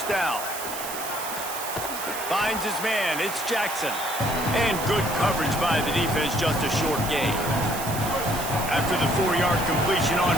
down. Finds his man. It's Jackson. And good coverage by the defense, just a short gain. After the 4-yard completion on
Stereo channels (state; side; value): noise; right; hiss, 8 dB below the sound